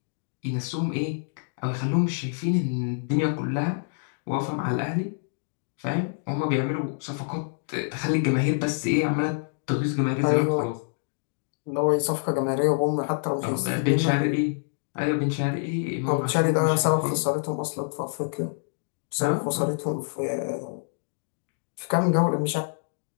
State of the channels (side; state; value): right; silent; digital silence